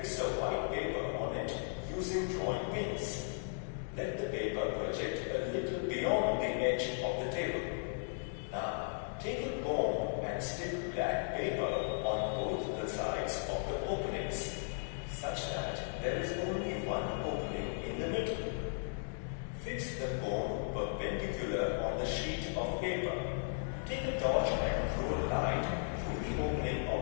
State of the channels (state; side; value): silent; right; digital silence